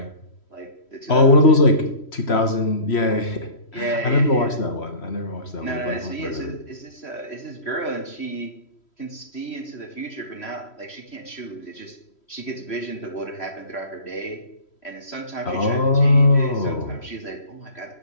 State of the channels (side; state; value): right; late; 3.1 ms